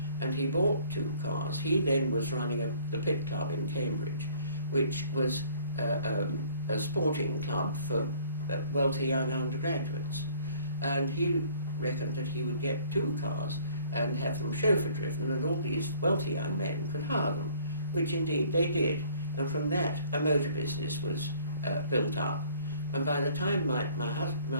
And he bought 2 cars. He then was running the Pit Club in Cambridge, which was a sporting club for wealthy young undergraduates. And he reckoned that he would get 2 cars and have them chauffeur driven, and all these wealthy young men could hire them, which indeed they did. And from that a motor business was built up. And by the time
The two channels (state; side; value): inverted; both; correlation -0.55